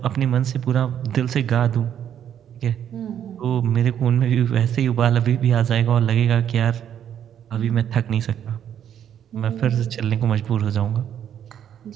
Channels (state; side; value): quieter; left; 9.6 dB